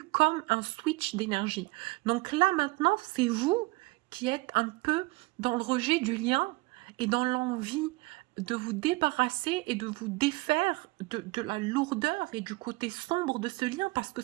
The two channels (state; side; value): quieter; left; 23.0 dB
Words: comme un switch d'énergie. Donc là, maintenant, c'est vous qui êtes un peu dans le rejet du lien et dans l'envie de vous débarrasser et de vous défaire de la lourdeur et du côté sombre de ce lien parce que